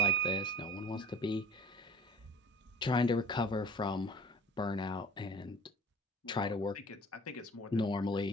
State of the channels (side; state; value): both; normal; correlation 0.45